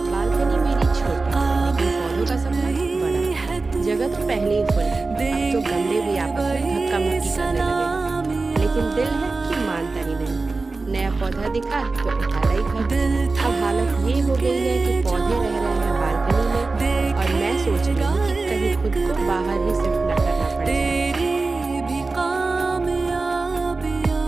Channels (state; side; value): quieter; left; 3.7 dB